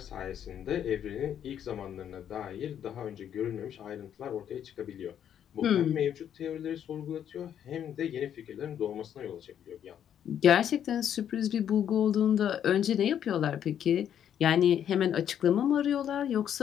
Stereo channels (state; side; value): quieter; right; 9.5 dB